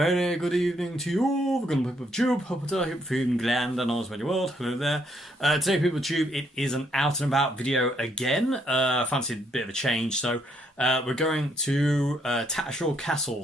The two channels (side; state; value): both; normal; correlation 0.72